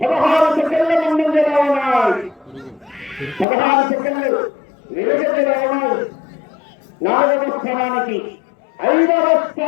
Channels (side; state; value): right; drops out; at 3.5 s